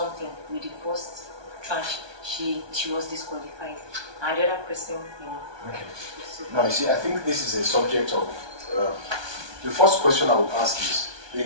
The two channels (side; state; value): left; late; 1.2 ms